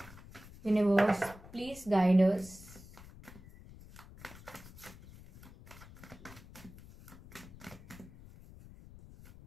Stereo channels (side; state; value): left; noise; rumble, 18 dB below the sound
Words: Universe please guide us.